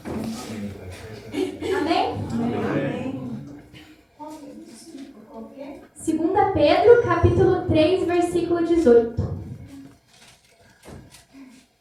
Amém? Amém. 2 Pedro, capítulo 3, versículo 18.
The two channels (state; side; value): identical; both; correlation 1.00